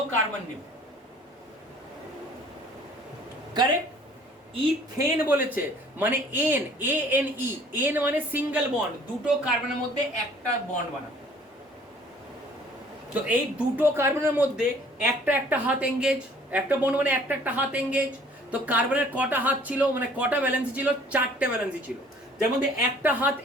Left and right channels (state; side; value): normal; both; correlation 0.55